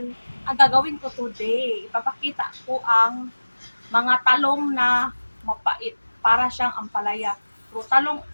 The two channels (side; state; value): both; inverted; correlation -1.00